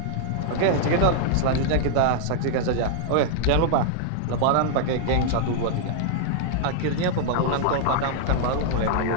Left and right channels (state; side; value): different; both; correlation -0.01